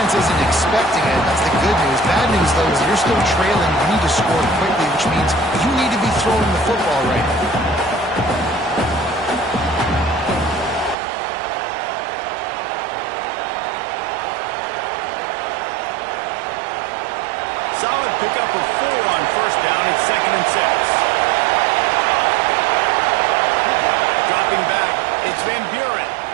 isn't expecting it. That's the good news. Bad news, though, is you're still trailing. You need to score quickly, which means you need to be throwing the football right now. Solid pickup of 4 on 1st down and 2nd and 6. Dropping back, it's Van Buren.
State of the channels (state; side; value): drops out; left; at 11.0 s